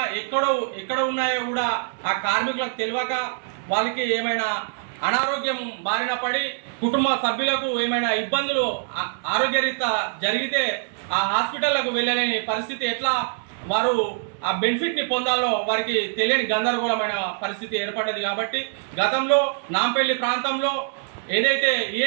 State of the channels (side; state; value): left; silent; 63 dB below the other